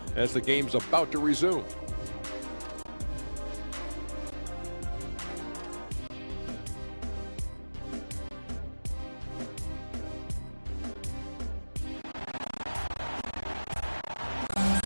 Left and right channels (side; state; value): both; inverted; correlation -1.00